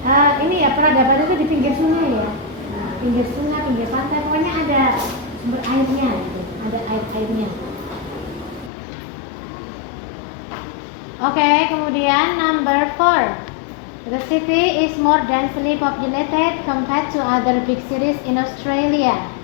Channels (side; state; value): right; drops out; at 8.7 s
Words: Ini ya peradaban itu di pinggir sungai ya, pinggir sungai, pinggir pantai, pokoknya ada sumber airnya gitu, ada airnya. Oke, kemudian number 4. The city is more densely populated compared to other big cities in Australia.